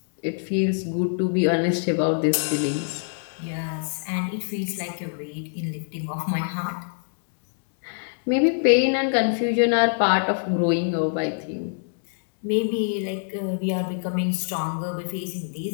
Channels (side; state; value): right; silent; digital silence